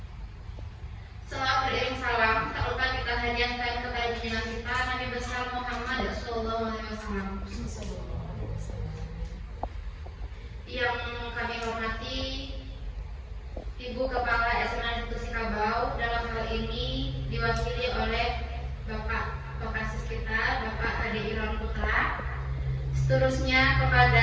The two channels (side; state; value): both; identical; correlation 1.00